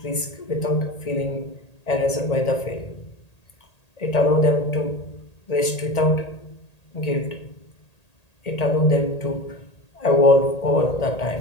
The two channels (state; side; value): late; right; 1.8 ms